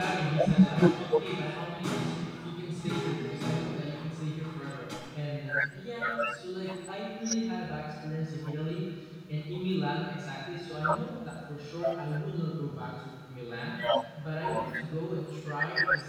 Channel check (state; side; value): identical; both; correlation 1.00